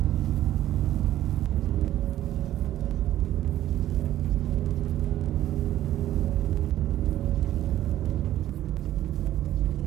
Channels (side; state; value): left; quieter; 13.1 dB